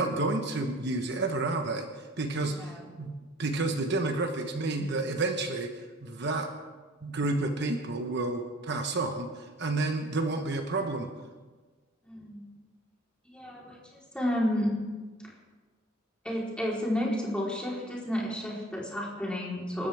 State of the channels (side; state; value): both; normal; correlation 0.47